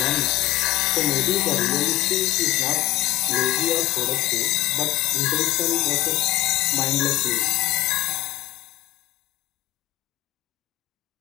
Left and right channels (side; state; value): right; quieter; 16.3 dB